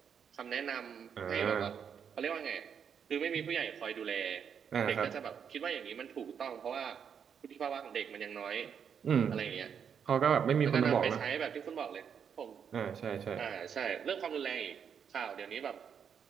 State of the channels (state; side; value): quieter; left; 7.4 dB